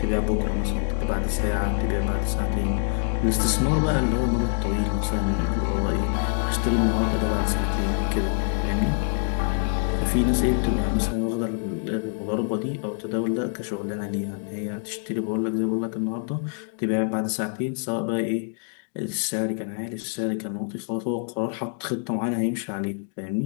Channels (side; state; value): right; silent; 56 dB below the other